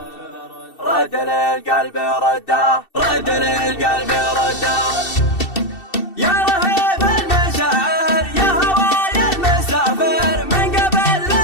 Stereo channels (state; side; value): late; right; 2.7 ms